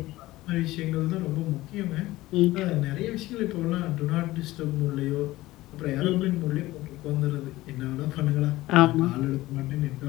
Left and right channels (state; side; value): quieter; right; 17.7 dB